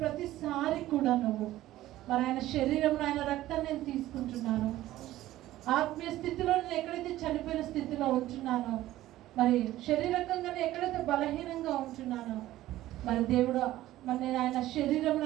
కూడా నువ్వు మరి ఆయన శరీరం ఆయన రక్తాన్ని నేను తీసుకుంటున్నాను. ఆత్మీయ స్థితిలో నేను ఎక్కడైతే చనిపోయిన స్థితిలో ఉంటున్నానో, మరి శారీరకంగానే ఎక్కడైతే బలహీనంగా ఉంటున్నానో, మరి దేవుడు మరి నేను ఆయన శరీరం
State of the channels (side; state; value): left; quieter; 15.1 dB